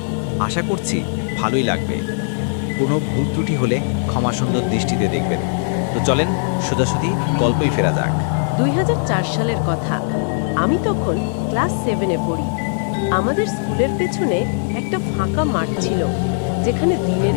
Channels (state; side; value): silent; right; 66 dB below the other